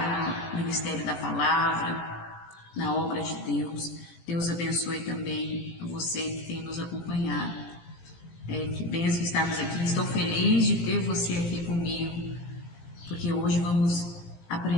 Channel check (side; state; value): right; late; 17 ms